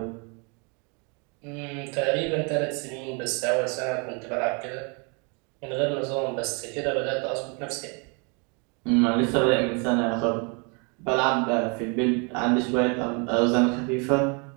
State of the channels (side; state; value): left; quieter; 33.9 dB